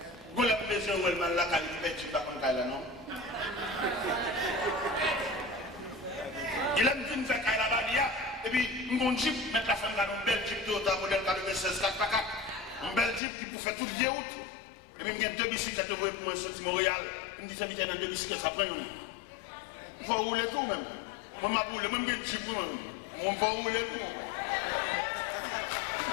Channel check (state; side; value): drops out; right; at 13.2 s